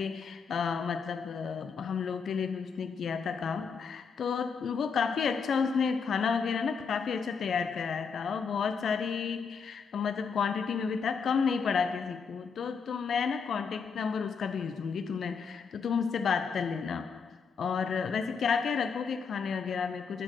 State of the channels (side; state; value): right; quieter; 5.8 dB